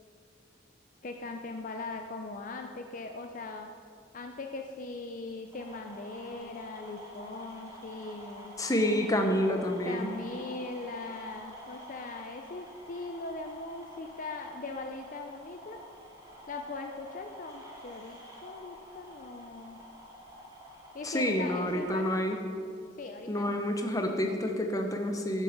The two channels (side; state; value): both; normal; correlation 0.49